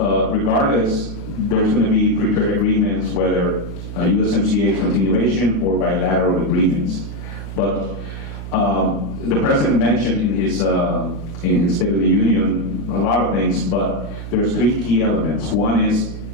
regardless, there's going to be free trade agreements, whether USMCA continuation or bilateral agreements. But the president mentioned in his State of the Union a lot of things, but there's 3 key elements. One is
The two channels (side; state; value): right; noise; hum, 9 dB below the sound